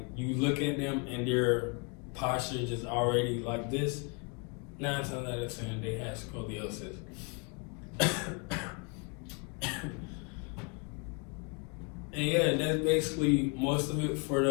you look at them and their posture is already like this, 9 times out of 10 they have scoliosis. And yeah, that's basically most of it for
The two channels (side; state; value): right; quieter; 33.0 dB